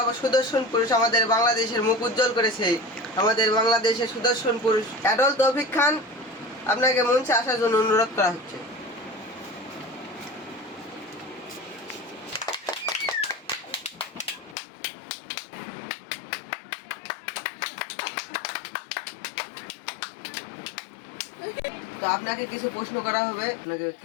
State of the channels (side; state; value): right; drops out; at 14.6 s